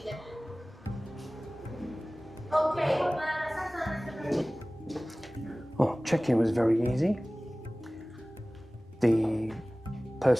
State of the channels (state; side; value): normal; both; correlation 0.98